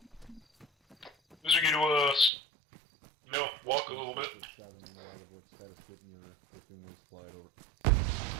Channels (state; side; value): drops out; left; at 2.3 s